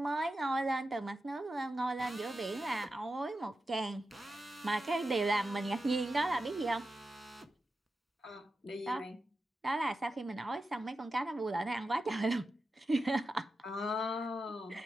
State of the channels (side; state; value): both; normal; correlation 0.91